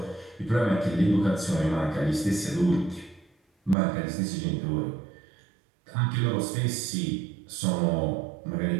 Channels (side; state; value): left; drops out; at 3.8 s